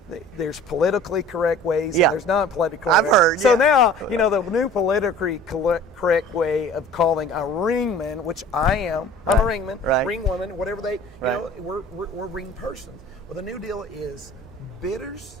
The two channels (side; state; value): both; normal; correlation 0.46